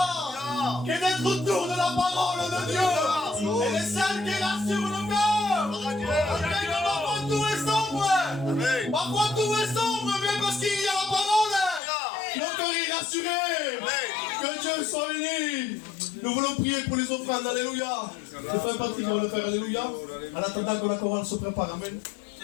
que d'être autour de la parole de Dieu. Elle est celle qui rassure le cœur. Après que parfois tout est sombre. Parfois tout est sombre, mais parce qu'il y a la parole. Le cœur est rassuré. Que Dieu soit béni. Nous voulons prier pour les offrandes. Alléluia. Le frère Patrick va le faire. Alléluia. En attendant que la chorale se prépare. Amen.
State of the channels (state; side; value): drops out; right; at 11.8 s